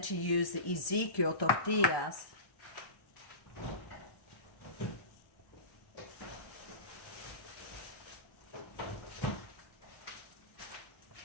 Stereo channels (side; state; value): right; late; 1.1 ms